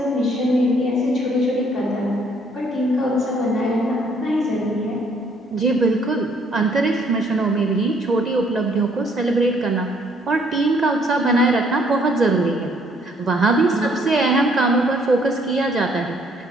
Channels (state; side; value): normal; both; correlation 0.65